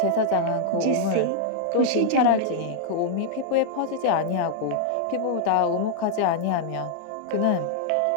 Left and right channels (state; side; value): different; both; correlation -0.01